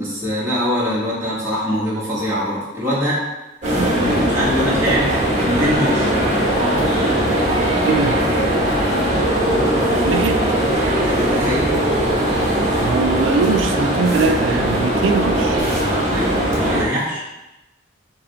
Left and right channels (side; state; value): both; normal; correlation 0.37